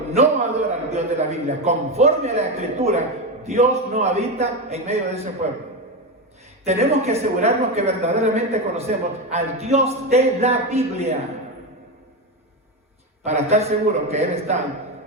no adora al Dios de la Biblia conforme a la Escritura, Dios no habita en medio de ese pueblo. Tenemos que asegurarnos que verdaderamente conocemos al Dios de la Biblia para estar seguros que Él está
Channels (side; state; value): both; normal; correlation 0.14